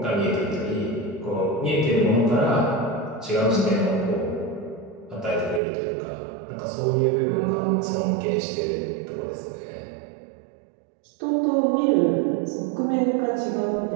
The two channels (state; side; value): drops out; left; at 5.6 s